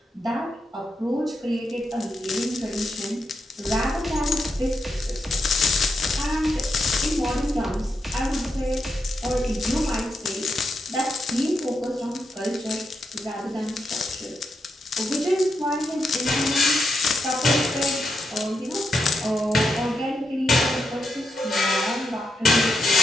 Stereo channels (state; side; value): normal; both; correlation 0.84